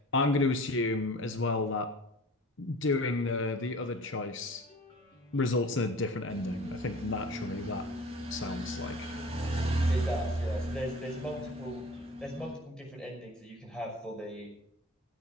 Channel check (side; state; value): both; normal; correlation 0.42